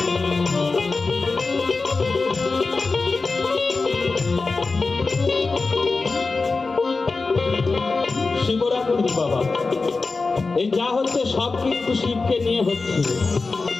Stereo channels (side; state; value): right; quieter; 3.9 dB